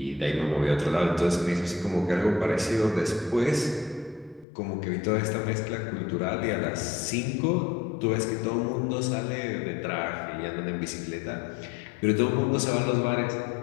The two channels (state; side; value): drops out; right; at 4.5 s